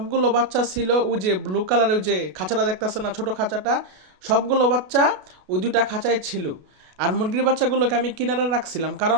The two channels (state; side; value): late; left; 33 ms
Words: বাচ্চা ছিল ওই যে ব্লু কালারের ওই যে খাঁচাটা দেখতেছে না, ছোট খাঁচাটা, সবগুলো বাচ্চা ওই দুইটা খাঁচায় ছিল। আর মুরগির বাচ্চাগুলোকে আমি কিনারে রাখছিলাম,